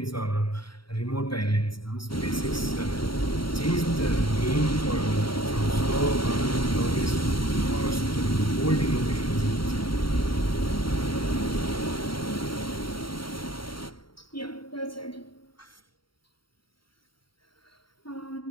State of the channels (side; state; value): right; late; 0.73 ms